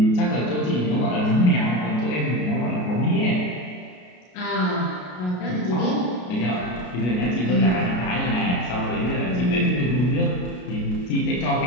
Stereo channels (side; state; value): right; late; 33 ms